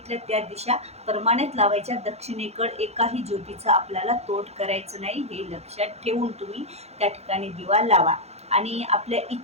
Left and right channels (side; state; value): left; late; 0.31 ms